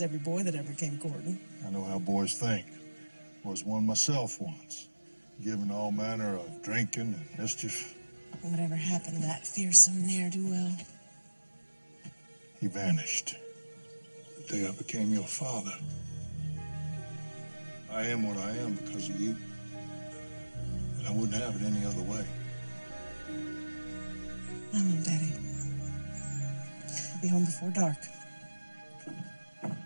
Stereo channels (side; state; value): both; inverted; correlation -1.00